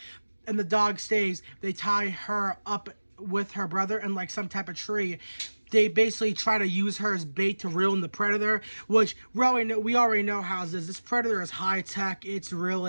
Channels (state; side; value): inverted; both; correlation -1.00